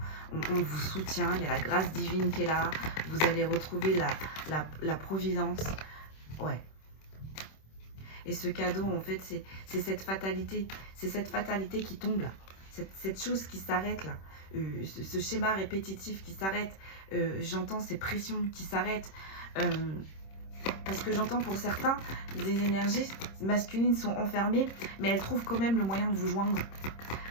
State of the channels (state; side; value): late; right; 26 ms